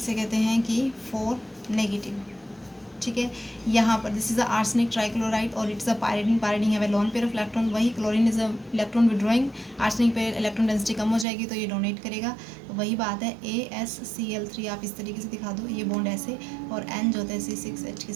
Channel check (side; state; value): left; drops out; at 11.2 s